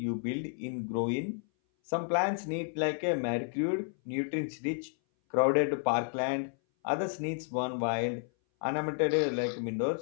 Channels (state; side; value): silent; right; 57 dB below the other